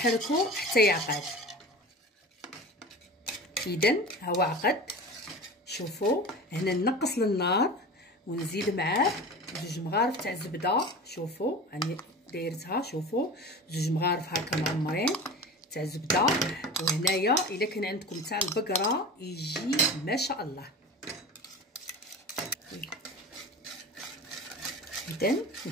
حتى يعقد. اذا هو عقد. شوفوا هنا نقص للنار ونزيد معاه 2 مغارف تاع الزبده. شوفوا راني دايرتها، شوفوا 2 مغارف هكا معمرين تاع الزبده. وهنايا الا كان عندكم تاع البقره يجي ما شاء الله. اذا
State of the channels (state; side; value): normal; both; correlation 0.33